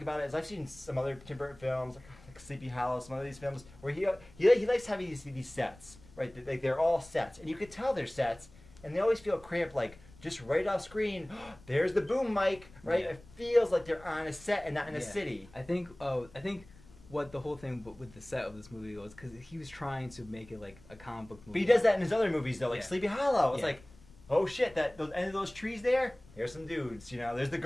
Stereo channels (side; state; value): left; noise; rumble, 23 dB below the sound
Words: about it is I've seen some other Tim Burton films, like like Sleepy Hollow, some of these films, where he likes having these sets, right? Like they're all sets, and you could tell they're sets, and they always feel cramped, like just right off screen. There's the boom mic, right? Yeah. It feels like they're on a set and not in a Yeah. city. I think what the whole thing with the set of this movie was because he was trying to make it like a comic book movie. But he does that in his other movies though, like Yeah. Sleepy Hollow. It's Yeah. like, oh shit, that those end of those trees there. Here's some dudes, you know. There's the